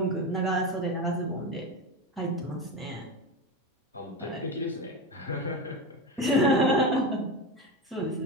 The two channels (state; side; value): normal; both; correlation 0.20